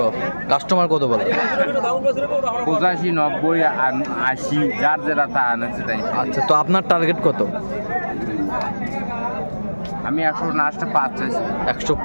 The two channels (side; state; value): both; inverted; correlation -1.00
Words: কাস্টমার কত বলে? 85, 90 আর 80, যার যেটা তা আনছে তাই। আচ্ছা, তো আপনার টার্গেট কত? আমি 100 লাস্টে 5 চাইছি।